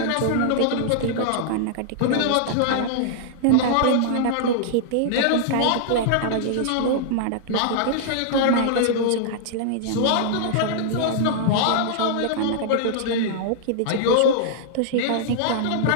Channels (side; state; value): both; different; correlation -0.01